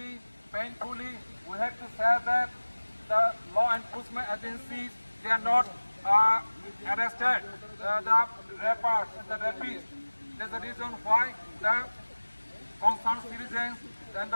painfully, we have to say that the law enforcement agencies, they are not arrested the rappers, the rapists. That's the reason why the concerned citizens and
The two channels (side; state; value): both; inverted; correlation -1.00